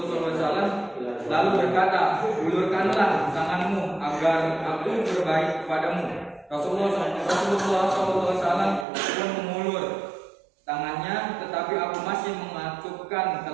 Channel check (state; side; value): drops out; left; at 8.8 s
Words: SAW, lalu berkata, ulurkanlah tanganmu agar aku berbaik kepadamu. Rasulullah SAW pun mengulur tangannya, tetapi aku masih mengatupkan